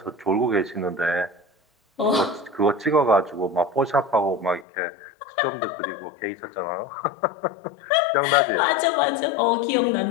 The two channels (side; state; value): right; drops out; at 4.7 s